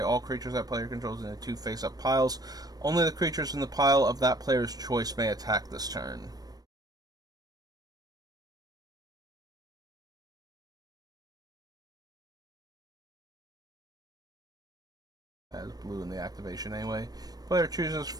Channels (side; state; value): left; late; 0.19 ms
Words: all creatures that player controls into 2 face-up piles. Only the creatures in the pile of that player's choice may attack this turn. Has blue in the activation anyway. Player chooses